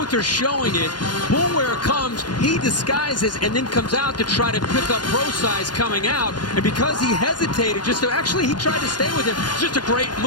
are showing it. Bullware comes. He disguises and then comes out to try to pick up Procise coming out. And because he hesitated, he tried to stay with him. It's just a great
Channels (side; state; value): right; late; 0.70 ms